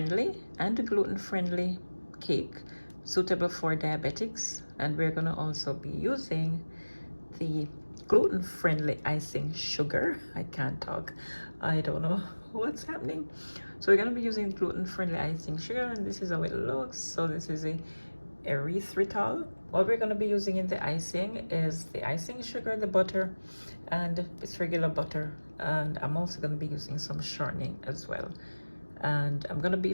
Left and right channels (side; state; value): both; inverted; correlation -1.00